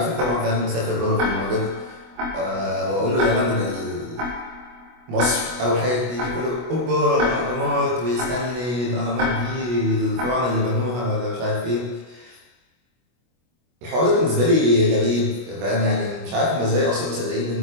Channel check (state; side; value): late; left; 25 ms